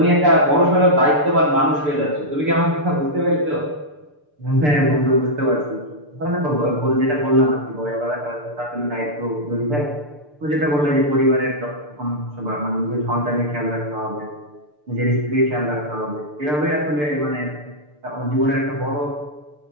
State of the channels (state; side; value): late; left; 6.8 ms